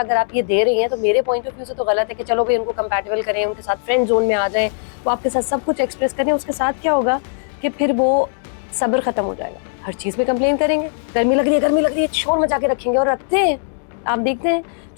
अगर आप ये दे रही हैं तो मेरे पॉइंट ऑफ व्यू से तो गलत है कि चलो भाई उनको कंपैटिबल करें, उनके साथ फ्रेंड जोन में आ जाएं, वो आपके साथ सब कुछ एक्सप्रेस करें। उसके साथ क्या होगा कि फिर वो सब्र खत्म हो जाएगा, हर चीज़ में कंप्लेन करेंगे, गर्मी लग रही है, शोर मचा के रखेंगे। और रखते हैं, आप देखते हैं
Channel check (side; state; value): right; silent; digital silence